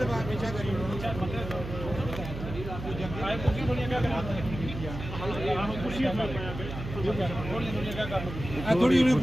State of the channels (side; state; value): right; noise; hum, 8 dB below the sound